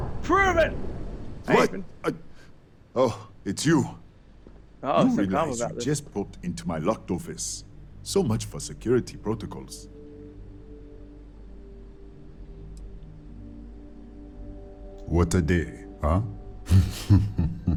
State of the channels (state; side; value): identical; both; correlation 1.00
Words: proven. What? Oh, it's you. Oh, you so calm realize about you this. just popped into my locked office. So much for security protocols. What a day, huh?